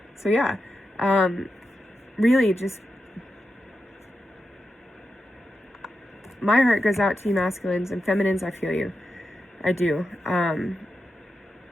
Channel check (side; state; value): both; normal; correlation 0.89